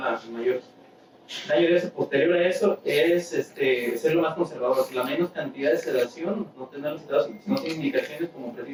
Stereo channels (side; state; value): both; identical; correlation 1.00